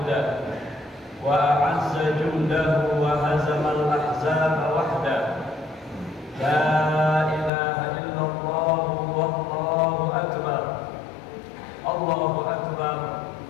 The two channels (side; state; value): right; drops out; at 7.5 s